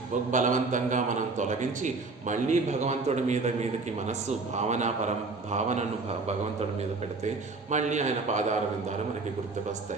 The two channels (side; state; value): left; quieter; 3.8 dB